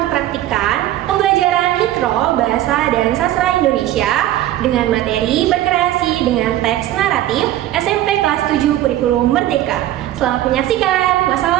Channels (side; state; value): left; quieter; 13.7 dB